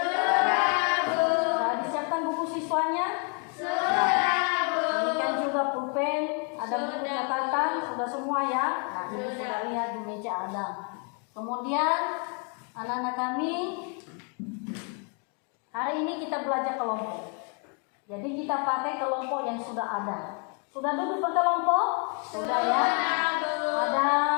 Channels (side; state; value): right; quieter; 36.7 dB